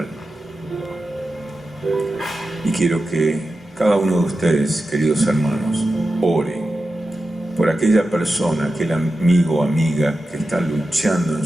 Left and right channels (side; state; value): both; normal; correlation 0.92